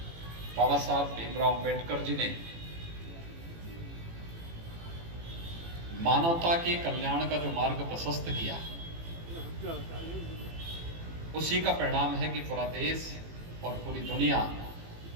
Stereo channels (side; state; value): left; late; 18 ms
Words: बाबा साहब भीमराव अंबेडकर जी ने मानवता के कल्याण का जो मार्ग प्रशस्त किया, उसी का परिणाम है कि पूरा देश और पूरी दुनिया